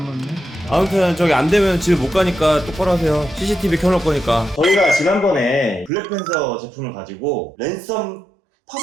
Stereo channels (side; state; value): left; drops out; at 5.9 s